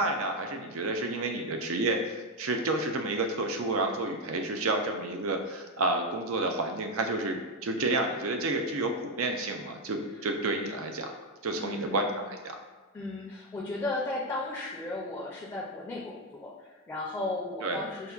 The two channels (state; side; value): normal; both; correlation 0.05